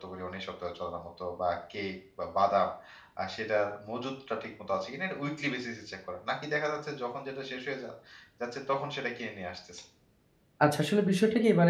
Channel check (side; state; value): both; identical; correlation 1.00